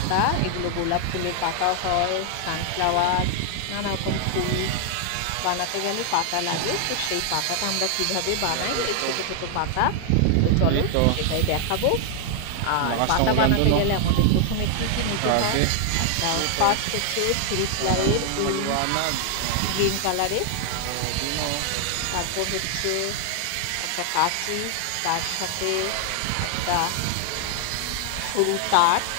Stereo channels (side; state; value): both; different; correlation 0.00